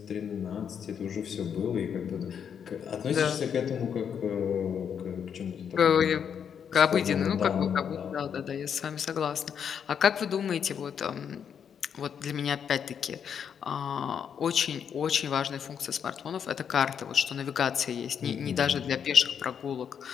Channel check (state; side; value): quieter; right; 7.8 dB